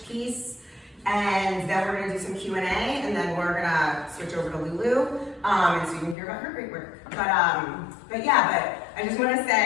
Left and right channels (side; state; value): right; drops out; at 6.2 s